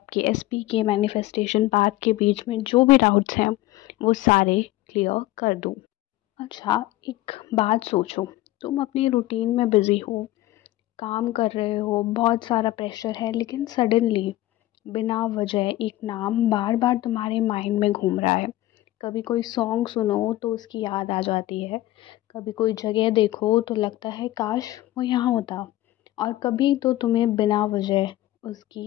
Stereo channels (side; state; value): right; quieter; 16.2 dB